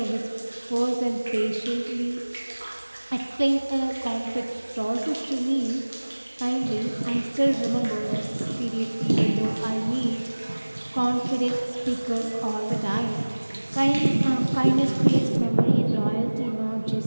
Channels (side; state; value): both; inverted; correlation -1.00